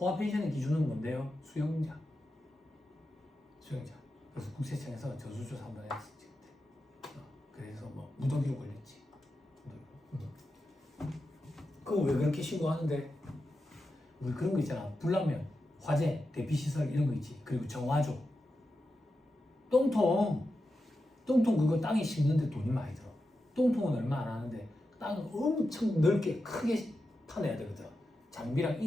펜션의 기준은 뭔데요? 수영장. 그래서 국세청에서 전수조사 한번 했었지 그때. 그래서 뭐 무더기로 걸렸지. 그거 왜 그렇게 신고하는데? 우리 그런 거 있잖아. 불나면 화재, 대피시설 이런 거 있지. 그리고 정화조. 똥통 그거 땅에 심는데 돈이 많이 들어. 똥통은 얼마 안 하는데 땅을 엄청 넓게 크게 파내야 되거든. 장비랑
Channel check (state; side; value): normal; both; correlation 0.90